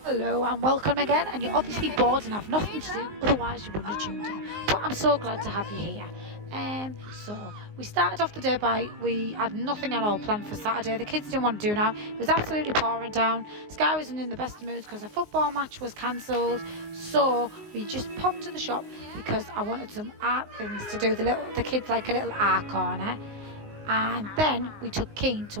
Hello and welcome again, and you're obviously bored and have nothing to do, otherwise you wouldn't have tuned in. But I'm so glad to have you here. So we started off the day we had nothing at all planned for Saturday. The kids didn't want to do now. It was absolutely pouring down. Sky wasn't in the best of moods because a football match was cancelled. So we just popped to the shop because I wanted some art things to do. The kids like a little art corner. And then we took Keen to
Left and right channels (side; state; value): left; late; 19 ms